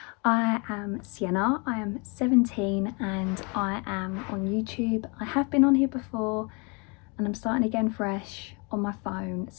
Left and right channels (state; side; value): quieter; right; 31.9 dB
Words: I am Sienna, I am 17 and I am on YouTube. I have been on here before and I'm starting again fresh on my phone,